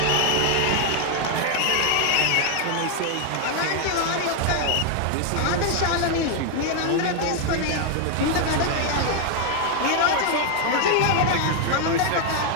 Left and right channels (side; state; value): both; different; correlation 0.01